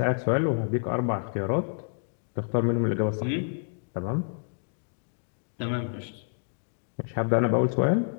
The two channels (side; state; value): right; silent; digital silence